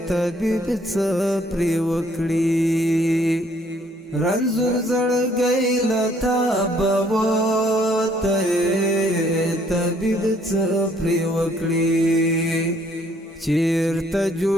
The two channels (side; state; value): both; normal; correlation 0.64